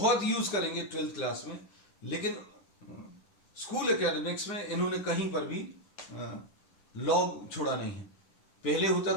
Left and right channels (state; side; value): late; right; 10 ms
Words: यूज करेंगे 12th क्लास में, लेकिन स्कूल एकेडमिक्स में इन्होंने कहीं पर भी लॉग छोड़ा नहीं है। पहले होता